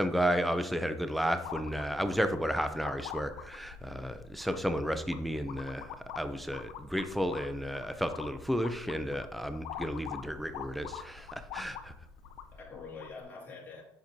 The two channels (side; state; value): both; normal; correlation 0.86